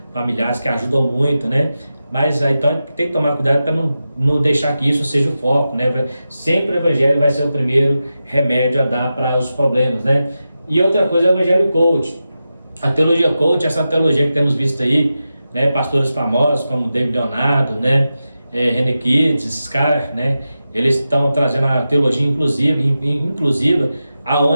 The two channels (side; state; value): both; inverted; correlation -0.91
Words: familiares que ajudam muito, Mas então tem que tomar cuidado para não deixar que isso seja o foco, né? Sempre o evangelho vai ser o primeiro remédio a dar para os problemas, né? E outra coisa é o evangelho coach. A teologia coach, essa teologia que temos visto aí, né? Pastores famosos como David Leonardo, né? René Kids, esses caras, né? Eles estão trazendo a teologia inclusiva,